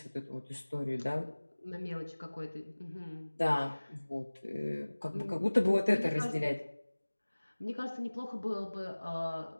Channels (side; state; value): both; inverted; correlation -1.00